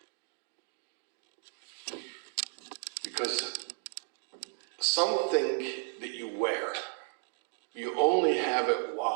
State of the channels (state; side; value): silent; left; 55 dB below the other